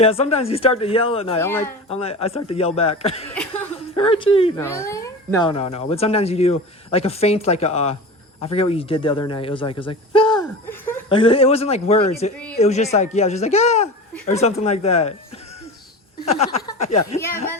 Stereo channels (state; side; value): normal; both; correlation 0.31